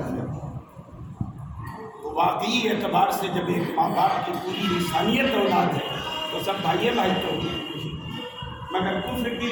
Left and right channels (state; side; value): identical; both; correlation 1.00